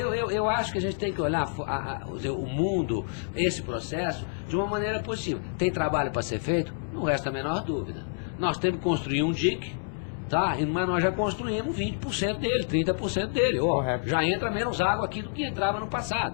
Eu acho que a gente tem que olhar o mundo, esse processo, de uma maneira positiva. Tem trabalho para ser feito? Não resta a menor dúvida. Nós temos que construir um dique, tá? Mas nós já construímos 20% dele, 30% dele. Correto. Já entra menos água aqui do que entrava no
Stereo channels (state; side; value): silent; right; digital silence